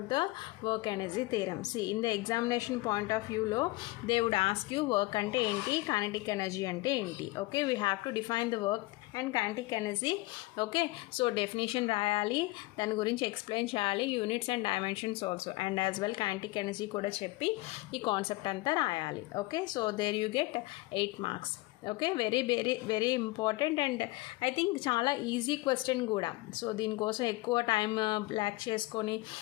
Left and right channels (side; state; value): right; quieter; 21.1 dB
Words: the work energy theorem. See, in the examination point of view lo they would ask you work ante enti, kinetic energy ante enti. Okay, we have to define the work and kinetic energy. Okay, so definition రాయాలి, దాని గురించి explain చేయాలి, units and dimensions also, and as well kinetic energy కూడా చెప్పి ఈ concept అంతా రాయాలి. Okay, so there you get 8 marks. Okay, very very very important and I think చాలా ఈజీ క్వశ్చన్ కూడా. సో దీనికోసం ఎక్కువ టైం బ్లాక్ చేసుకొని